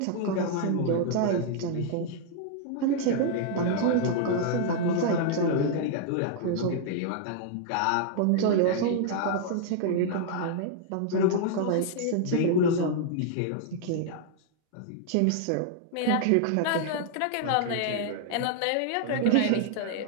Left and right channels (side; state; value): both; different; correlation 0.00